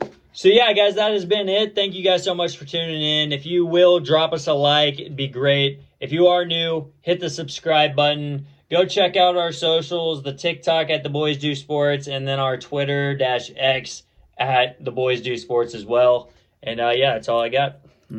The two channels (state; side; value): identical; both; correlation 1.00